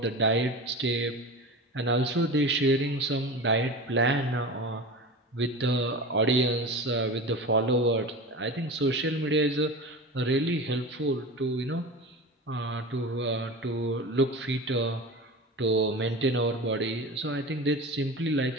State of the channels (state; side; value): normal; both; correlation 0.30